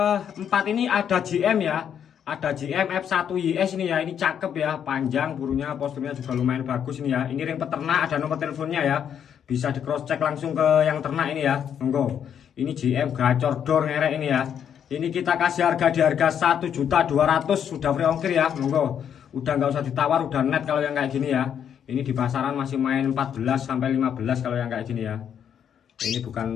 ini ada GM ya. Ada GM F1 YS ini ya. Ini cakep ya, panjang burungnya, posturnya juga lumayan bagus ini ya. Ini ring peternak, ada nomor teleponnya ya. Bisa di cross check langsung ke yang ternak ini ya. Monggo. Ini GM gacor dor ngerek ini ya. Ini kita kasih harga di harga 1.200.000 sudah free ongkir ya. Monggo. Udah nggak usah ditawar, udah net kalau yang kayak gini ya. Ini di pasaran masih main 14 sampai 15 kalau yang kayak gini ya. Ini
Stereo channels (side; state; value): right; quieter; 8.6 dB